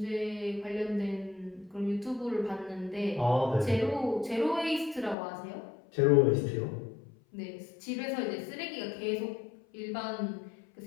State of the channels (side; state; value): right; drops out; at 5.2 s